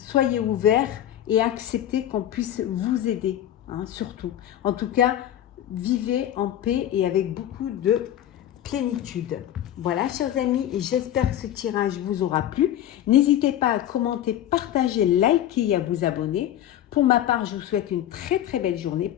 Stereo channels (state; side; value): quieter; right; 11.6 dB